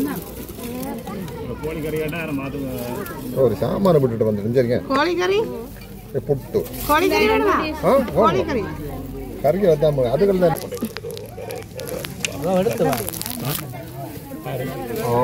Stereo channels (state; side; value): identical; both; correlation 1.00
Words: ஒரு சாம்பாரை விட்டுட்டு வந்துட்டு கோழிக்கறி புட்டு கோழிக்கறி கறிக்கு வந்தாம அதுகள் தான்.